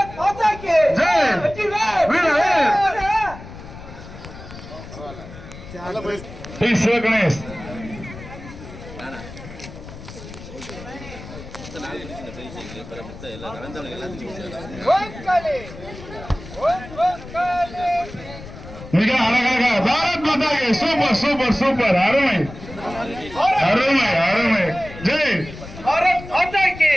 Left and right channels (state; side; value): noise; left; rumble, 14 dB below the sound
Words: माता की जय वीरवेल प्लीज गणेश ஓம் காளி ஓம் காளி மிக அழகாக பாரத் மாதாக்கு சூப்பர் சூப்பர் சூப்பர் அருமை அருமை அருமை ஜெய் பாரத் மாதா கி